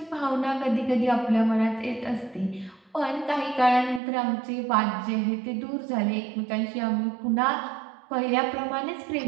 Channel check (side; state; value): left; drops out; at 4.0 s